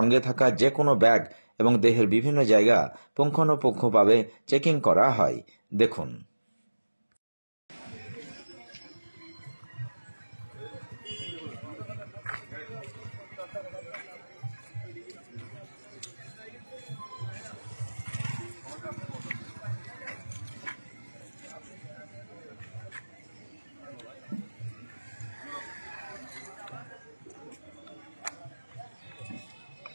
থাকা যে কোনো ব্যাগ এবং দেহের বিভিন্ন জায়গা পুঙ্খানুপুঙ্খভাবে চেকিং করা হয়। দেখুন।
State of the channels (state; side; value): inverted; both; correlation -1.00